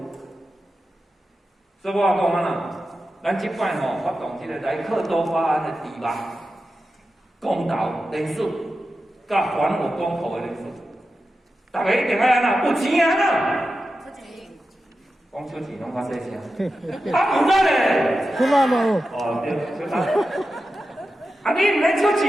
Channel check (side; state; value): both; normal; correlation 0.91